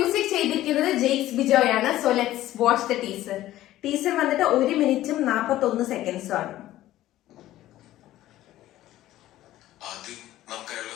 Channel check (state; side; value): quieter; right; 14.6 dB